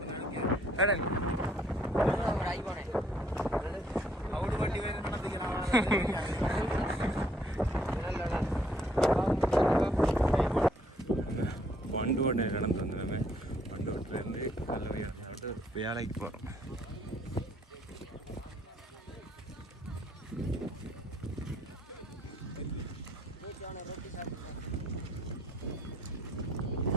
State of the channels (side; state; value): both; normal; correlation 0.66